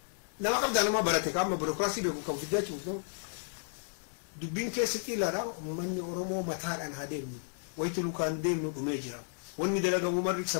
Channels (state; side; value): silent; right; 56 dB below the other